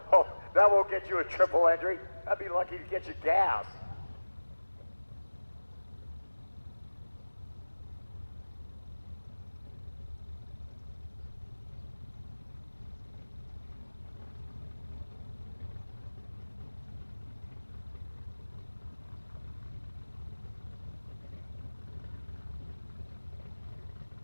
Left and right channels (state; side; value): inverted; both; correlation -1.00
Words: Oh, that won't get you a triple entry. That'd be lucky to get you gas.